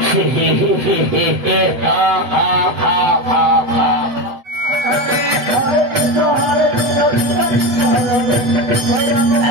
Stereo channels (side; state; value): left; late; 8.0 ms